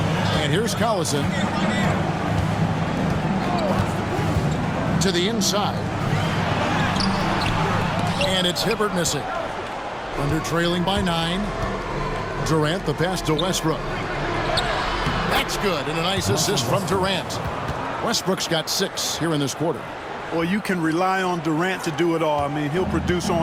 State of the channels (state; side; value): identical; both; correlation 1.00